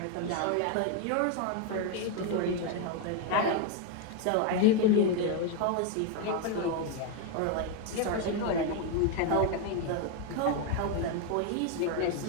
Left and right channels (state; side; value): different; both; correlation 0.01